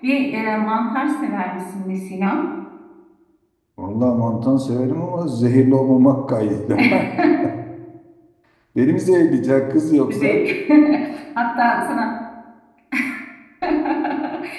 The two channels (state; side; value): identical; both; correlation 1.00